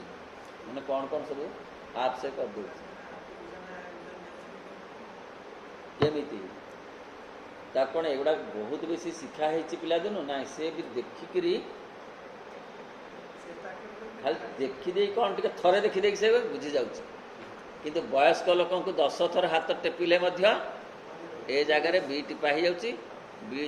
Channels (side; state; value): both; identical; correlation 1.00